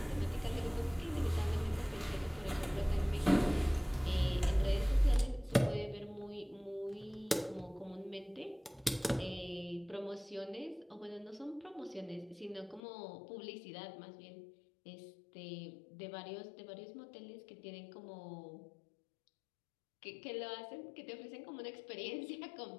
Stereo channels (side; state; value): right; drops out; at 12.8 s